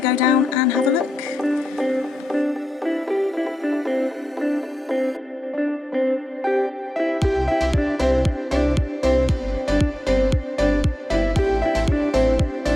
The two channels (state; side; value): normal; both; correlation 0.89